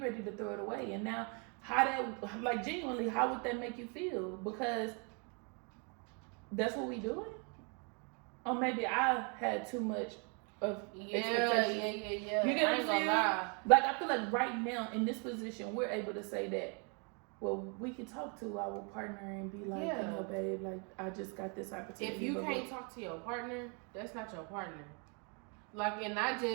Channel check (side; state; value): left; quieter; 35.9 dB